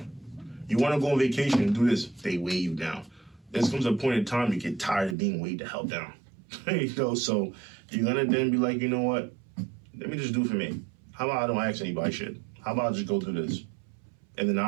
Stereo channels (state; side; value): drops out; left; at 5.2 s